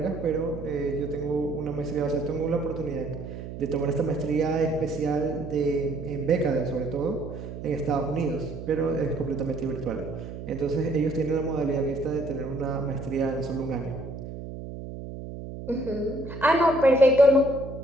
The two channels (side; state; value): right; noise; hum, 10 dB below the sound